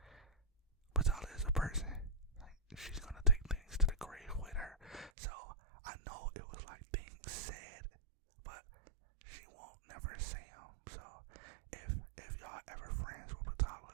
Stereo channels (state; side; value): drops out; left; at 5.1 s